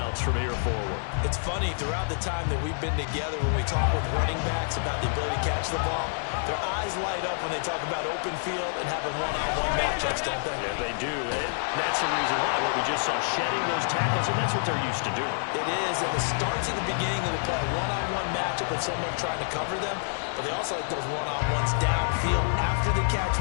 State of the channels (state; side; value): silent; right; digital silence